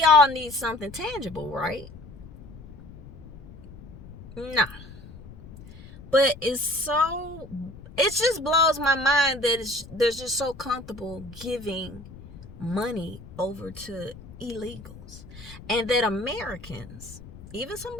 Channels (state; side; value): noise; left; rumble, 17 dB below the sound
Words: all need something tangible, right? No. But it just blows my mind that they're just so comfortable giving money over to illegals. And that Americans, even some